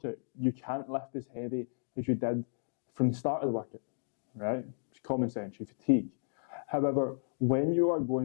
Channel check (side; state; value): right; silent; digital silence